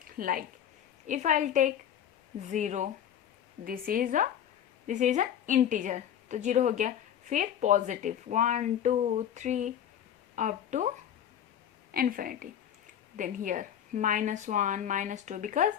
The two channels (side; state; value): right; quieter; 9.7 dB